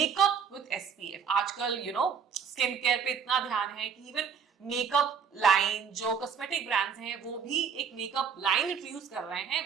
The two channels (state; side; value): quieter; left; 6.7 dB